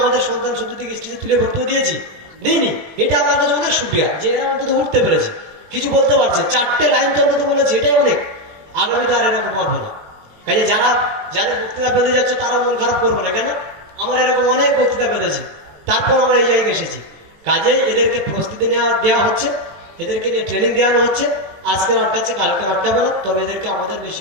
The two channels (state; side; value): late; left; 20 ms